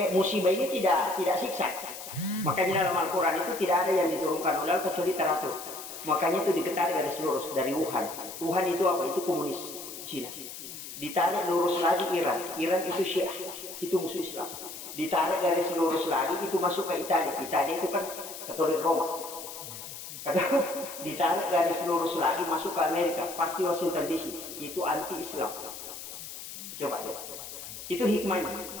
musibah ini tidak siksa makanya dalam Al-Quran itu tidak ada yang diturunkan oleh kecuali teratur. Makanya itu ditarik garis lurus dari Wuhan. Wuhan itu apa? Itu komunis Cina. Ditarik lurus lagi Iran. Iran itu Syiah, itu musuh Islam. Ditarik garis lurus lagi itu masuk ke Italia. Italia itu kan Katolik Roma. Ditarik garis lurus lagi masuk ke Amerika, pasti Washington DC. Itu anti Islam. Coba deh. Itu hikmahnya.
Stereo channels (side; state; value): left; noise; hiss, 11 dB below the sound